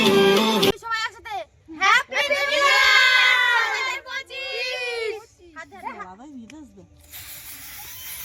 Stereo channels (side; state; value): both; identical; correlation 1.00